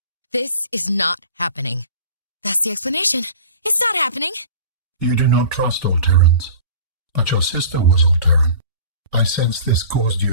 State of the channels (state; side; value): inverted; both; correlation -0.40